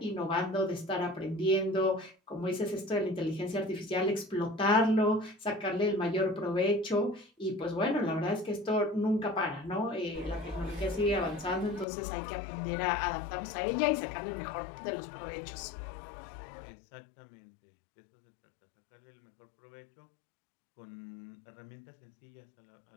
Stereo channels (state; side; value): drops out; right; at 11.9 s